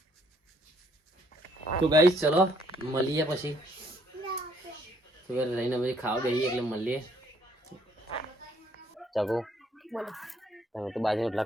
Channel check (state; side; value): normal; both; correlation 0.65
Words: તો ગાઈસ ચલો મળીએ પછી તો લઈને પછી ખાવા બેહીએ એટલે મળીએ ચાકુ બોલો તમે તો બાજુ રોટલા